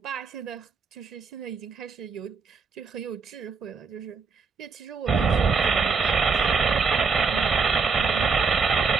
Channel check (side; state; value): left; quieter; 5.1 dB